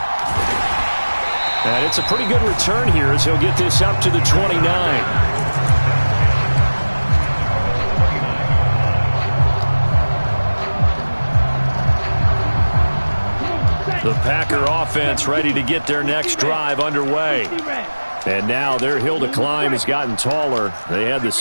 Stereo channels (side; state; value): both; inverted; correlation -1.00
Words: And it's a pretty good return here as he'll get this up to the 29. The Packer offense ready to get their next drive underway. And now their hill to climb has gotten taller. They had the